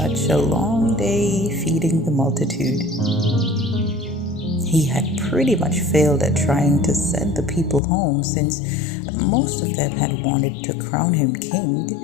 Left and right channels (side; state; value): right; drops out; at 7.8 s